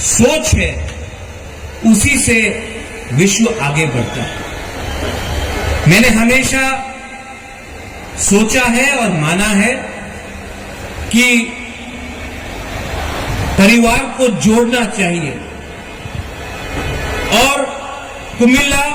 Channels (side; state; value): both; identical; correlation 1.00